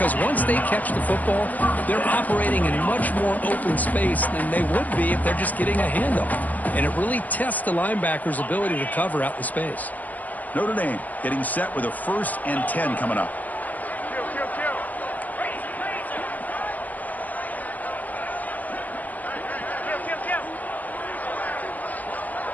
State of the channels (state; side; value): late; right; 0.079 ms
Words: once they catch the football, they're operating in much more open space than they would be if they're just getting a handoff. And it really tests the linebacker's ability to cover out the space. Notre Dame getting set with a 1st and 10 coming up.